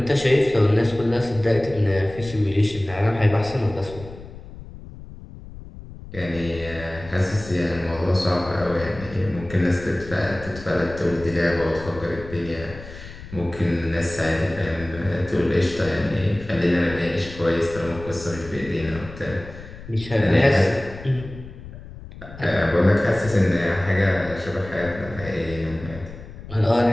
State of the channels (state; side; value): noise; left; rumble, 15 dB below the sound